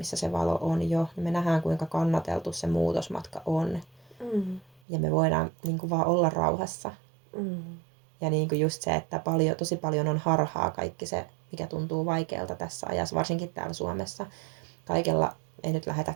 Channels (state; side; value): drops out; left; at 4.8 s